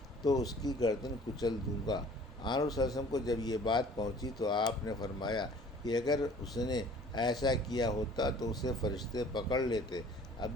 تو اس کی گردن کچل دوں گا۔ آن صلی اللہ علیہ وسلم کو جب یہ بات پہنچی تو آپ نے فرمایا کہ اگر اس نے ایسا کیا ہوتا تو اسے فرشتے پکڑ لیتے۔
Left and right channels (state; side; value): normal; both; correlation 0.50